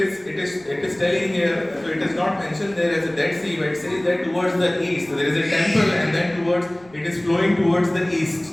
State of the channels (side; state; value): right; noise; rumble, 27 dB below the sound